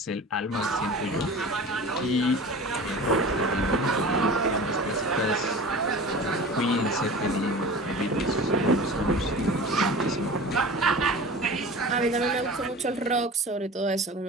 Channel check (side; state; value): both; normal; correlation 0.37